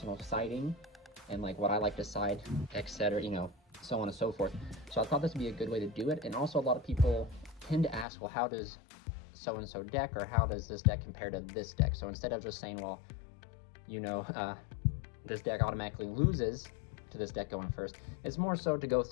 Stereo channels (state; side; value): drops out; right; at 8.1 s